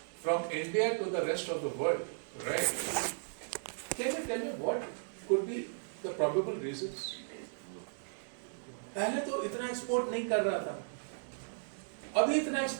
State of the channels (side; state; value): left; silent; digital silence